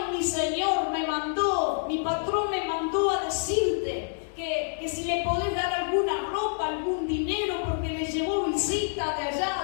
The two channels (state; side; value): silent; right; digital silence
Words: mi señor mi patrón me mandó a decirte que si le podés dar alguna ropa, algún dinero, porque le llevó visita de allá